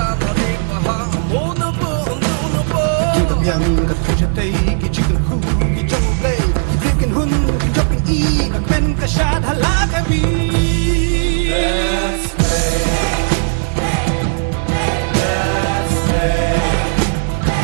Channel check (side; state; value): left; silent; digital silence